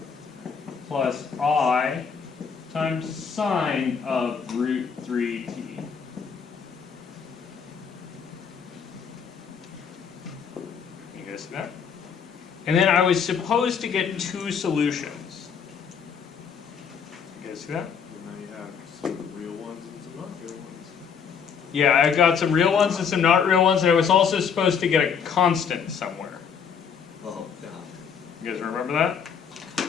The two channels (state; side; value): quieter; right; 6.7 dB